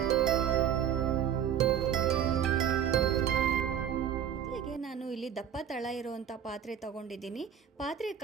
ನಾನು ಇಲ್ಲಿ ದಪ್ಪ ತಳ ಇರುವಂಥ ಪಾತ್ರೆ ತಗೊಂಡಿದ್ದೀನಿ. ಪಾತ್ರೆ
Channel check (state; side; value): quieter; left; 9.1 dB